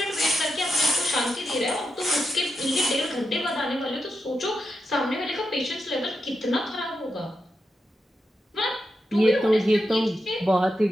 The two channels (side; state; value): both; normal; correlation 0.87